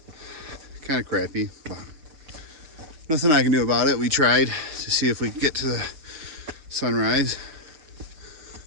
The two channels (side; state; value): left; late; 6.6 ms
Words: kind of crappy, but nothing I can do about it. We tried to see if we could get to the sunrise.